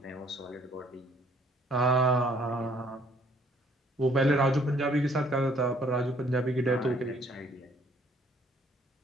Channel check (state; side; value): normal; both; correlation 0.63